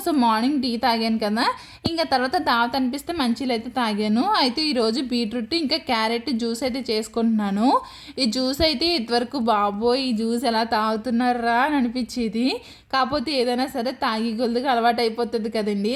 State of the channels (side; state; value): both; identical; correlation 1.00